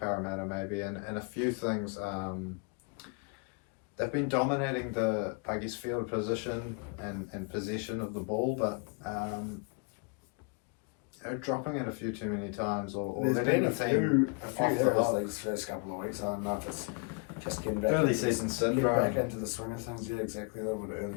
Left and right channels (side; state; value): right; quieter; 33.9 dB